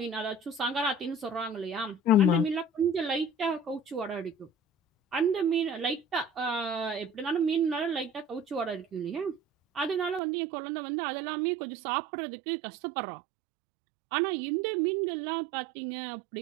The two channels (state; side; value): drops out; left; at 10.2 s